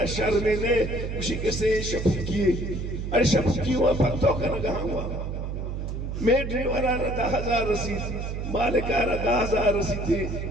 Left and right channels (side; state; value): right; noise; hum, 4 dB below the sound